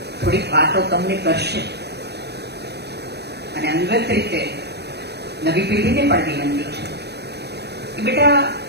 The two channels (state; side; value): late; left; 0.48 ms